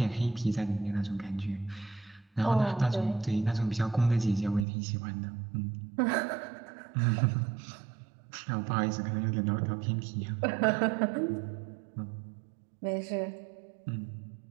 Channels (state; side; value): drops out; left; at 4.7 s